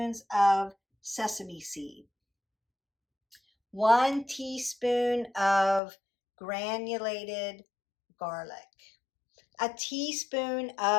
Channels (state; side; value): drops out; right; at 5.8 s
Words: of sesame seed, 1 teaspoon of granulated garlic, a teaspoon